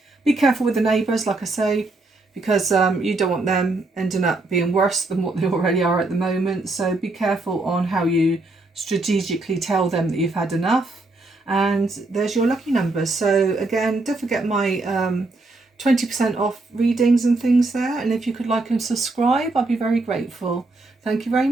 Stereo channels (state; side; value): quieter; left; 3.1 dB